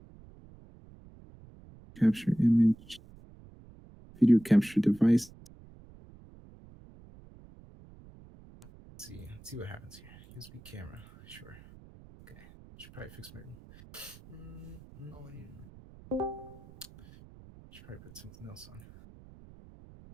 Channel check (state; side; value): noise; right; rumble, 21 dB below the sound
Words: Capture image. Video capture device. Let's see what happens here. USB camera. Sure. Okay. Should probably fix my room. Should probably put something else on.